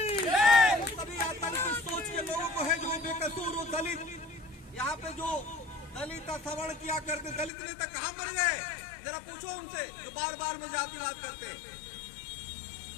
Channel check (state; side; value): drops out; right; at 7.5 s